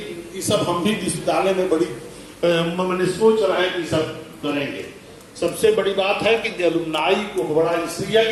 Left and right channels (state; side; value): identical; both; correlation 1.00